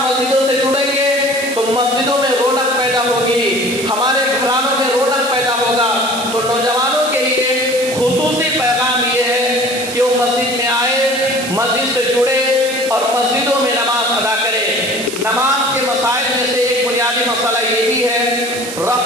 مسجدوں میں رونق پیدا ہوگی، ہمارے گھرانوں میں رونق پیدا ہوگا۔ تو نوجوانوں کے لیے خصوصی پیغام یہ ہے کہ وہ مسجد میں آئے، مسجد سے جڑے اور مسجدوں میں نماز ادا کرے۔ نماز کے مسائل میں سے ایک بنیادی مسئلہ یہ بھی ہے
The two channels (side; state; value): right; noise; hiss, 9 dB below the sound